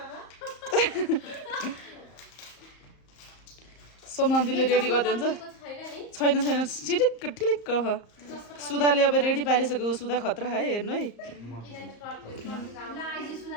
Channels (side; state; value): right; late; 34 ms